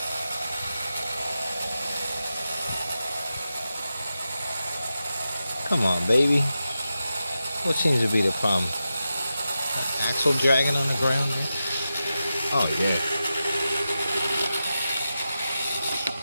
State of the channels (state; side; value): inverted; both; correlation -0.90